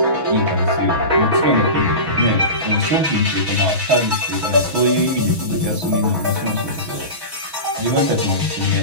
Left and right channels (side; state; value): left; late; 6.2 ms